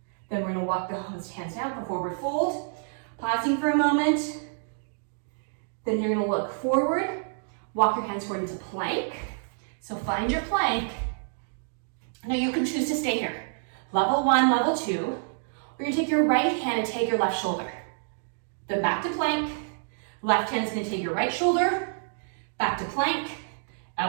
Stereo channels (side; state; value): left; silent; digital silence